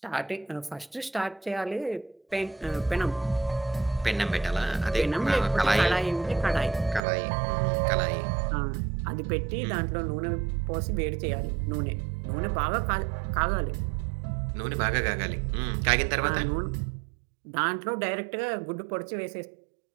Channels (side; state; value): left; drops out; at 7.0 s